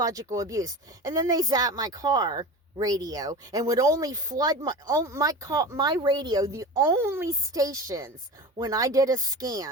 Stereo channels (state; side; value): normal; both; correlation 0.31